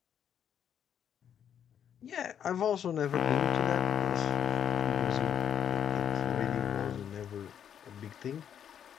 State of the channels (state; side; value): quieter; right; 8.9 dB